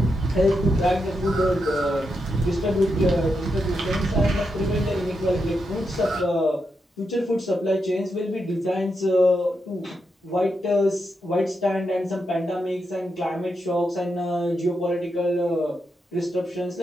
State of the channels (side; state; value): both; normal; correlation 0.84